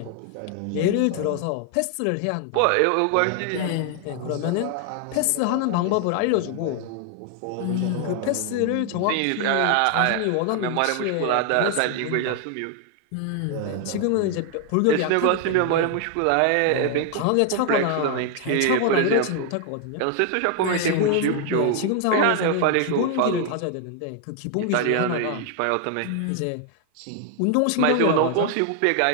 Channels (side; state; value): both; different; correlation 0.00